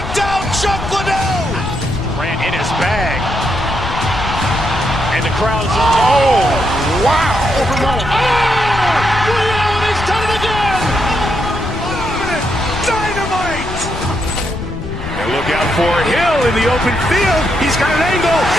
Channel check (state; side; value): noise; left; rumble, 8 dB below the sound